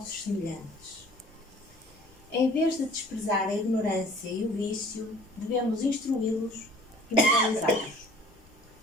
semelhantes. Em vez de desprezar a ignorância e o vício, devemos instruí-los e moralizá-los.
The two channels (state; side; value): normal; both; correlation 0.52